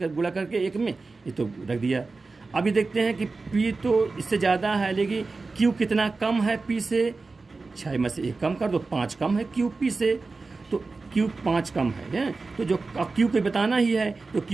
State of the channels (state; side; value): quieter; left; 3.8 dB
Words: गुणा करके 1 में ये तो रख दिया। अभी देखते हैं कि पी तो इससे ज़्यादा है, लेकिन क्यू कितना कम है पी से? 6 में से 1 कम कर दो, 5 कम है क्यू पी से, तो क्यू 5 कम है, तो जो क्यू को बताना ही है तो